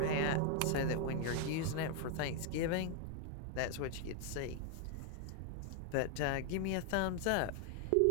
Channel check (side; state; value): both; different; correlation 0.00